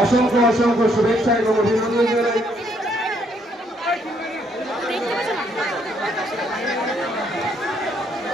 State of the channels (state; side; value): normal; both; correlation 0.70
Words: অসংখ্য অসংখ্য শুভেচ্ছা এবং অভিনন্দন জানাই।